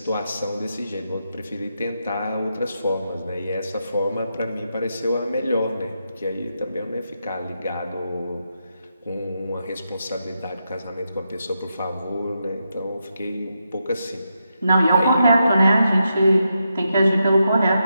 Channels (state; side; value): inverted; both; correlation -0.84